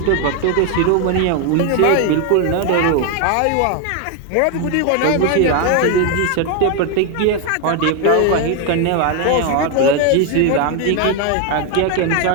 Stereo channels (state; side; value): different; both; correlation 0.01